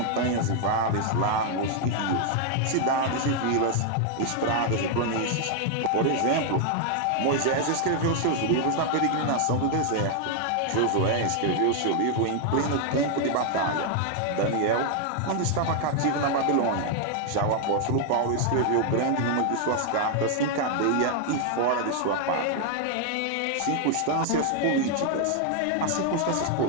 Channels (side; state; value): both; different; correlation 0.00